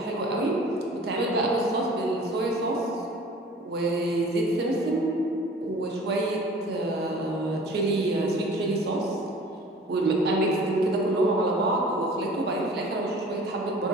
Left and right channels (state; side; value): normal; both; correlation 0.46